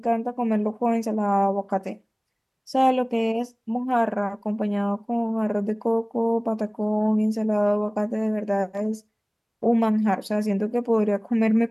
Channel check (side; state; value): both; identical; correlation 1.00